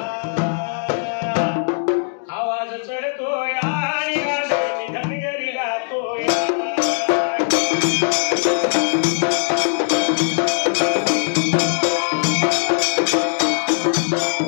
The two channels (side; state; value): right; silent; digital silence